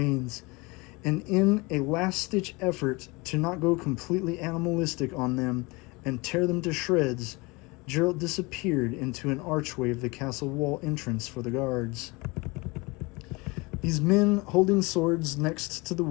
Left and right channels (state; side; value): quieter; right; 25.5 dB